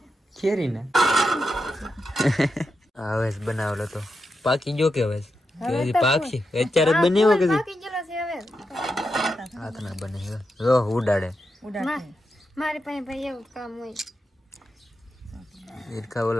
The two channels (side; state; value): both; normal; correlation 0.87